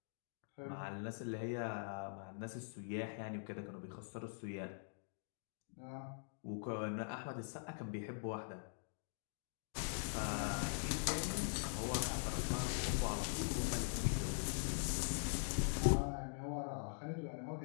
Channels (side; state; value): right; silent; digital silence